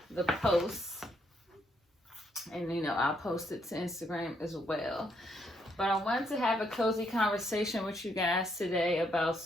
the post, and I'll post it to Instagram as well. But I wanted to have a cozy conversation with you guys today about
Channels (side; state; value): both; normal; correlation 0.74